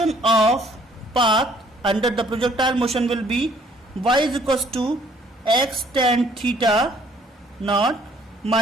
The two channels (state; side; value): normal; both; correlation 0.61